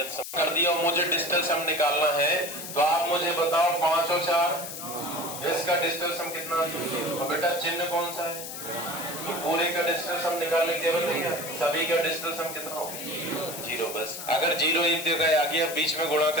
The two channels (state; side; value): noise; left; hiss, 9 dB below the sound